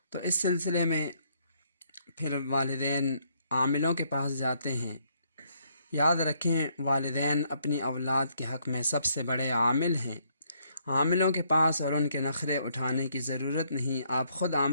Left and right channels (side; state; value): both; inverted; correlation -0.70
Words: تو اس سلسلے میں پھر والدین عاملوں کے پاس جاتے ہیں۔ یاد رکھیں، والدین اپنی اولاد کے حق میں سب سے بڑے عامل ہیں۔ عاملوں کے پاس اور ان کے نخرے اٹھانے کی ضرورت نہیں، آپ خود